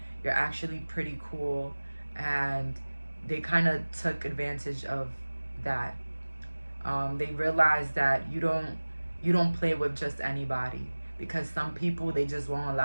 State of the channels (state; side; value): inverted; both; correlation -1.00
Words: You're actually pretty cool, and they kind of took advantage of that. They realize that you don't play with just anybody, because some people, they just won't